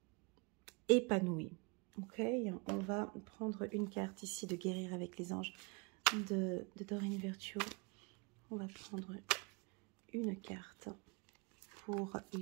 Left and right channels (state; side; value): quieter; left; 30.4 dB